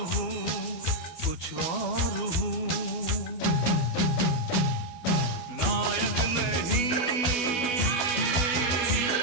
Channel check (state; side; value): late; right; 12 ms